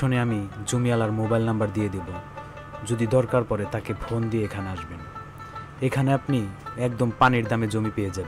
আমি জমিওয়ালার মোবাইল নাম্বার দিয়ে দেব, যদি দরকার পড়ে তাকে ফোন দিয়ে এখানে আসবেন। এখানে আপনি একদম পানির দামে জমি পেয়ে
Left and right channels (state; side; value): identical; both; correlation 1.00